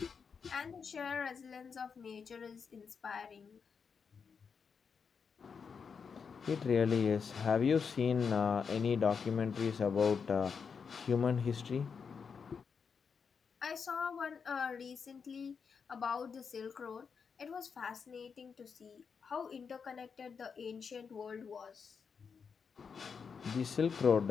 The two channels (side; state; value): right; quieter; 6.0 dB